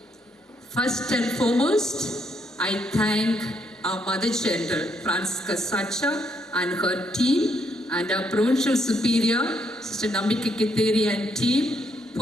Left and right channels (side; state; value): both; normal; correlation 0.74